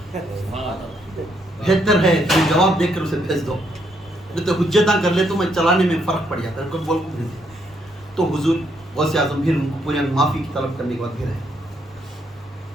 بہتر ہے تمہیں جواب دے کر اسے بھیج دو، نہیں تو حجتاں کر لے تو میں چلانے میں فرق پڑ جاتا ہے. کوئی بول کو بھیج دے تو حضور غوث اعظم پھر ان کو پورے معافی کی طلب کرنے کے بعد پھر آئے،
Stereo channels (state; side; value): normal; both; correlation 0.74